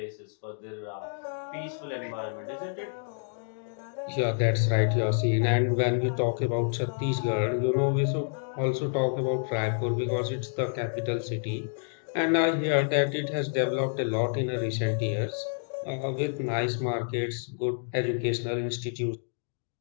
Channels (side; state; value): right; silent; digital silence